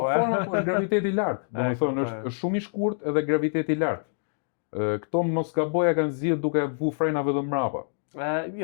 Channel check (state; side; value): silent; right; digital silence